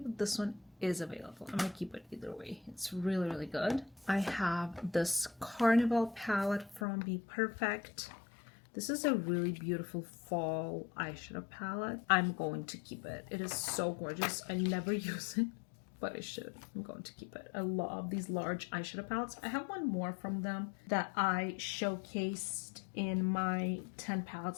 this one is available. I'm gonna keep it either way. It's really, really good. I have this Carnival palette from Be Perfect. This is a really beautiful fall eyeshadow palette. I'm going to keep it. It is so gorgeous. I never use it, but I should. I'm going to keep it. I love these large eyeshadow palettes. I have one more from them that I showcased in my 10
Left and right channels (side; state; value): right; drops out; at 6.9 s